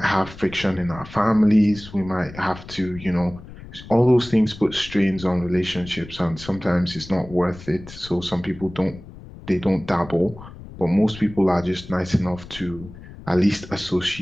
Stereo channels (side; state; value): left; noise; rumble, 16 dB below the sound